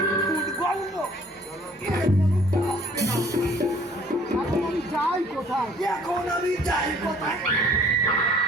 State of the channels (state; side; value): normal; both; correlation 0.56